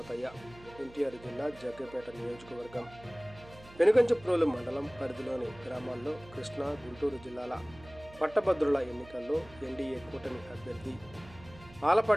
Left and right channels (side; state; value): right; noise; hum, 21 dB below the sound